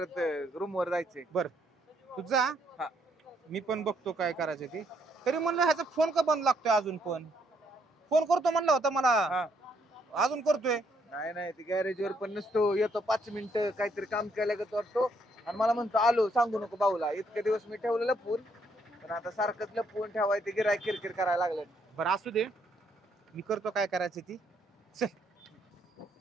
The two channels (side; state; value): both; normal; correlation 0.71